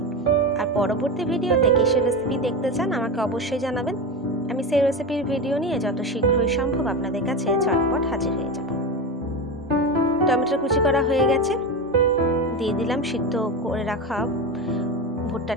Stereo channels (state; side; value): normal; both; correlation 0.19